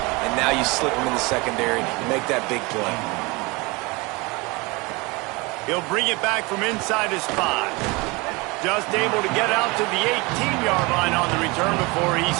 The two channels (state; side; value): quieter; left; 25.5 dB